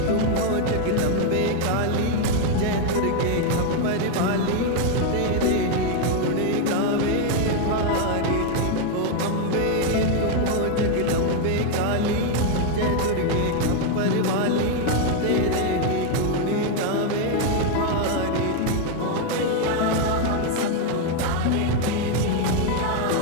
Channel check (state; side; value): different; both; correlation 0.01